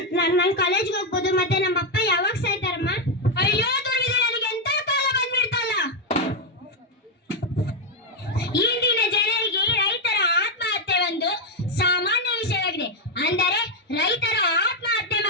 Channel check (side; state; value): both; normal; correlation 0.03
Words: ನಾನು ಕಾಲೇಜ್ಗೆ ಹೋಗ್ಬೋದು. ಮತ್ತೆ ನಮ್ಮ ಅಪ್ಪ ಯಾವಾಗ ಸಾಯ್ತಾರಮ್ಮ? ಅಯ್ಯೋ ದುರ್ವಿಧಿ, ನನಗೆ ಎಂತ ಕಾಲ ಬಂದ್ಬಿಡ್ತಲ್ಲ. ಇಂದಿನ ಜನರಿಗೆ ರೈತರ ಆತ್ಮಹತ್ಯೆ ಒಂದು ಸಾಮಾನ್ಯ ವಿಷಯವಾಗಿದೆ. ಅಂದರೆ ರೈತರ ಆತ್ಮಹತ್ಯೆ